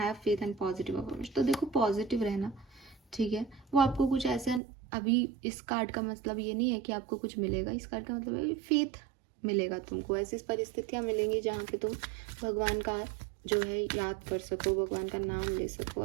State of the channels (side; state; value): left; drops out; at 4.6 s